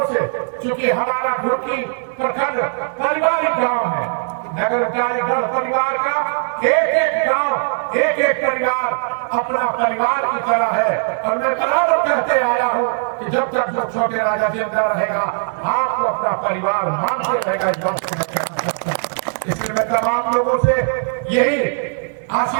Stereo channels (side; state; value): left; silent; 66 dB below the other